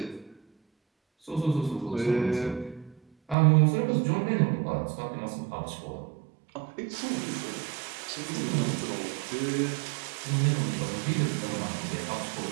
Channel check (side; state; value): left; drops out; at 3.4 s